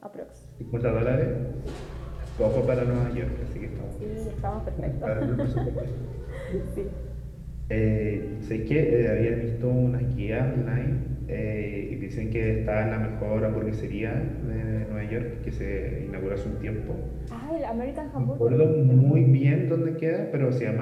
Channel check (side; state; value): both; identical; correlation 1.00